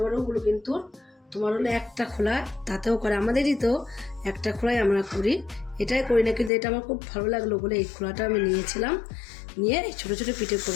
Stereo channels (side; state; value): right; drops out; at 6.5 s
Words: বড়গুলো কিন্তু তোমার হলো একটা খোলা তাতেও করে। আমাদেরই তো একটা খোলাই আমরা করি, এটাই করি না, কিন্তু এটা আমার খুব ভালো লাগলো বলে এই খোলাটা আমি নিয়েছিলাম। নিয়ে এই ছোটো ছোটো পিঠে